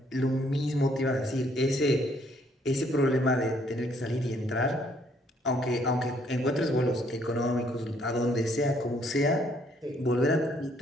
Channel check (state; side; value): normal; both; correlation 0.66